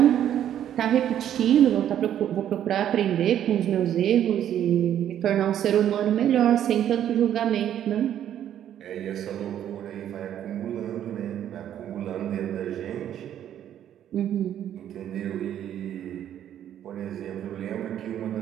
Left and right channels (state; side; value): quieter; left; 10.6 dB